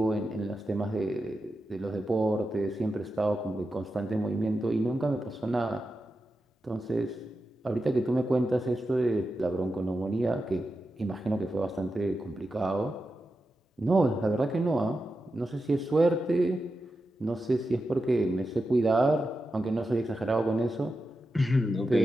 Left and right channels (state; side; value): normal; both; correlation 0.90